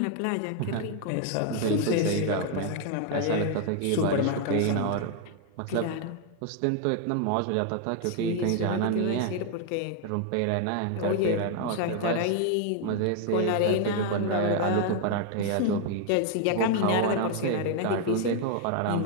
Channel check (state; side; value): different; both; correlation 0.00